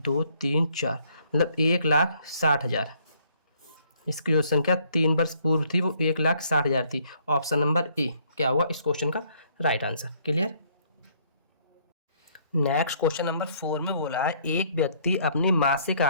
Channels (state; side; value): inverted; both; correlation -0.65